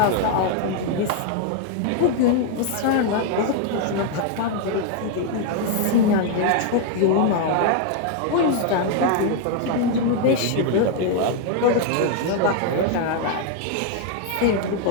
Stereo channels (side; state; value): both; different; correlation 0.00